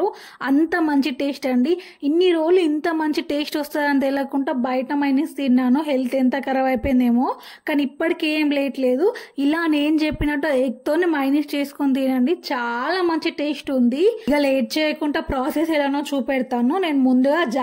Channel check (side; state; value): both; identical; correlation 1.00